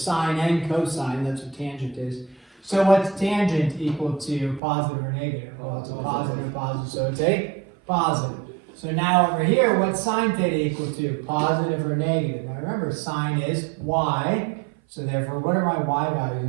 and cosine. That's what tangent is. So what's tangent equal to? Positive or negative? Well, it's a positive, so it's a positive. So now over here, what's sine theta equal to? Positive or negative? Now remember, sine is y, so therefore, what are my y values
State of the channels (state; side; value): drops out; left; at 4.6 s